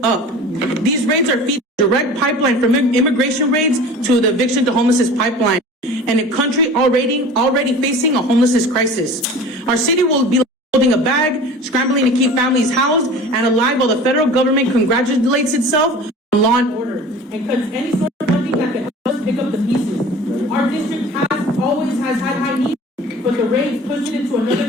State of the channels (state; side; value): normal; both; correlation 0.40